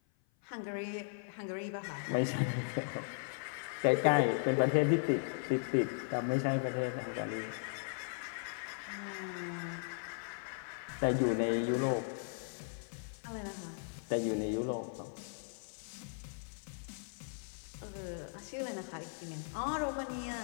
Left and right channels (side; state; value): right; silent; 53 dB below the other